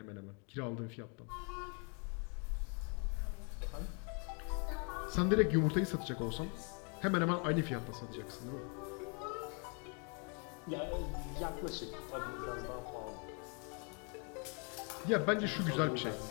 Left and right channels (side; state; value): right; quieter; 37.2 dB